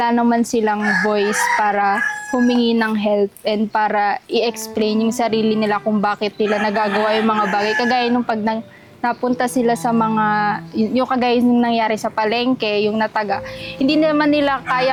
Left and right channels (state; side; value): identical; both; correlation 1.00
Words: naman silang voice para humingi ng help and para i-explain yung sarili nila kung bakit nila nagagawa yung mga bagay. Kagaya nung pag napunta sila sa mga, yung kagaya nung nangyari sa palengke, yung nataga, hindi naman nila